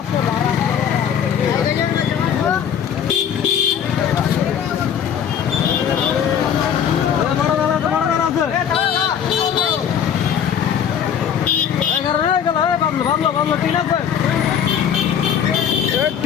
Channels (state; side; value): quieter; right; 8.4 dB